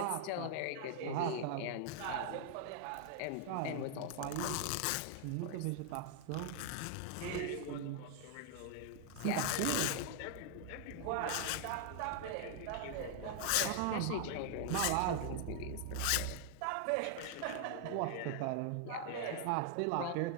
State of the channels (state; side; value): different; both; correlation 0.00